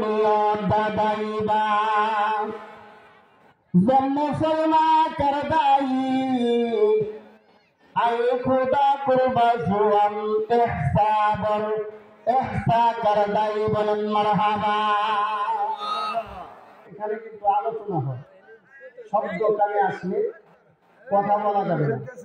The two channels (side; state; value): both; identical; correlation 1.00